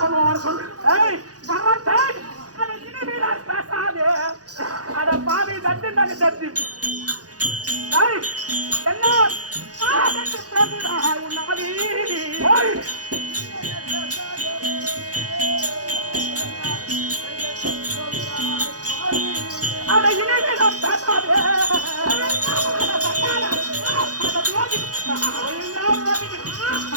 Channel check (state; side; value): late; left; 0.68 ms